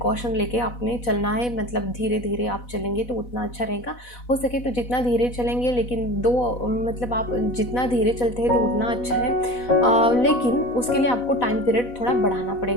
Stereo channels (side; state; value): right; late; 4.1 ms